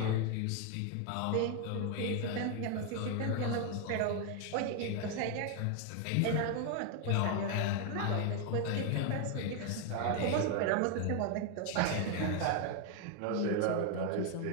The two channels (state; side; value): different; both; correlation 0.01